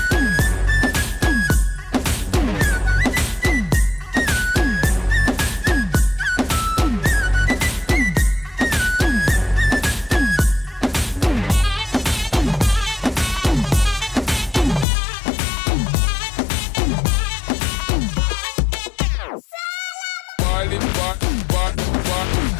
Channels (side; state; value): right; drops out; at 14.9 s